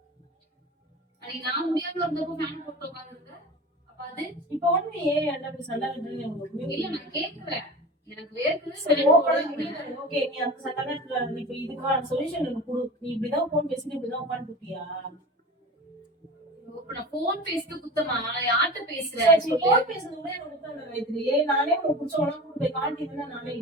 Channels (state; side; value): normal; both; correlation 0.34